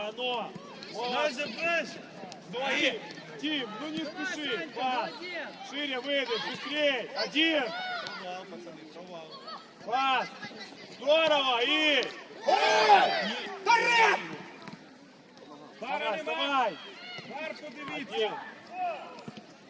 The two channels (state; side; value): identical; both; correlation 1.00